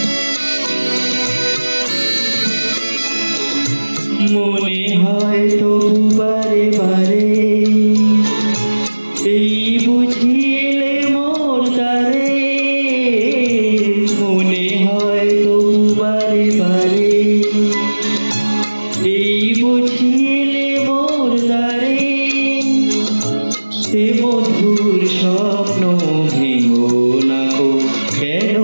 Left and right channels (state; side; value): inverted; both; correlation -1.00